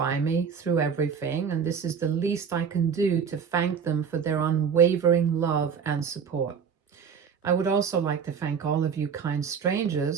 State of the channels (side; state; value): left; quieter; 6.7 dB